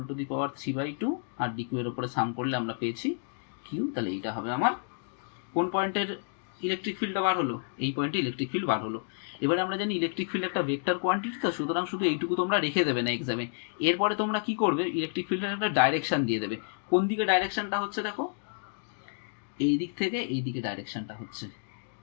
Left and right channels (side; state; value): right; silent; digital silence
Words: to the power 3/2, আর ডিকিউ এর উপরে সাম করলে আমরা পেয়েছি কিউ। তাহলে এইটা হবে আমার কোন পয়েন্টের ইলেকট্রিক ফিল্ডটা বার হলো? এই পয়েন্টে ইলেকট্রিক ফিল্ড বার হলো। এবারে আমরা জানি ইলেকট্রিক ফিল্ড একটা ভেক্টর কোয়ান্টিটি, তো সুতরাং শুধু এইটুকু তোমরা রেখে দেবে না এক্সামে। এরপরে তোমরা কি করবে? ইলেকট্রিক ফিল্ডের একটা ডাইরেকশন দিয়ে দেবে। কোন দিকে ডাইরেকশনটা হচ্ছে দেখো, এই দিক থেকে এই দিকে ডাইরেকশনটা হচ্ছে।